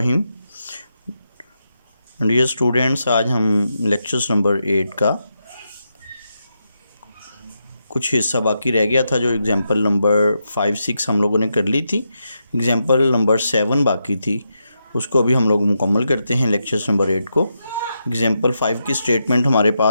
Dear students, आज हम लेक्चर्स नंबर 8 का कुछ हिस्सा बाकी रह गया था। जो एग्जांपल नंबर 5-6 हम लोगों ने कर ली थी, एग्जांपल नंबर 7 बाकी थी, उसको अभी हम लोग मुकम्मल करते हैं लेक्चर्स नंबर 8 को। एग्जांपल 5 की स्टेटमेंट हमारे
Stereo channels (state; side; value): inverted; both; correlation -0.84